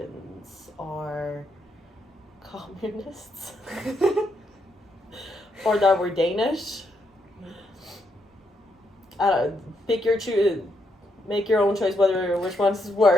are communists. Or that we're Danish. Make your own choice which one is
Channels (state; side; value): normal; both; correlation 0.78